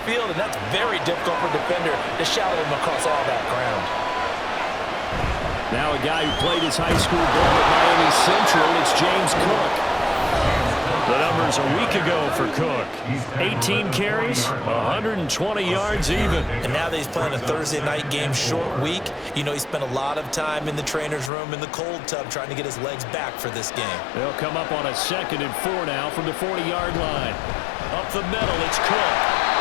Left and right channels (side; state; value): right; drops out; at 21.3 s